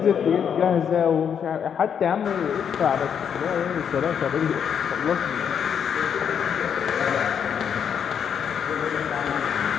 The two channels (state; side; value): quieter; right; 7.8 dB